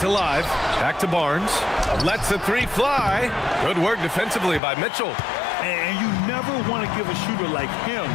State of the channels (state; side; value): drops out; right; at 4.6 s